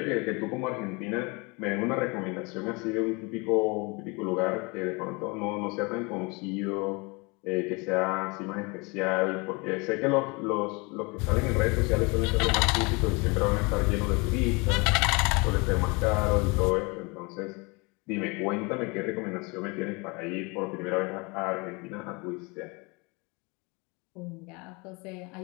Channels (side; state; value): right; quieter; 28.2 dB